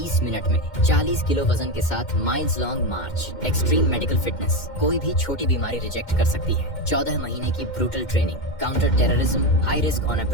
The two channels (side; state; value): right; late; 2.1 ms